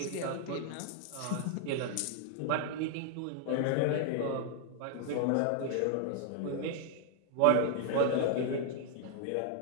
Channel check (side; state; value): both; different; correlation 0.00